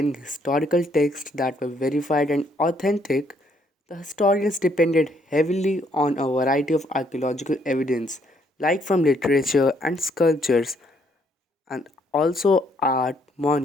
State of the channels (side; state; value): both; normal; correlation 0.69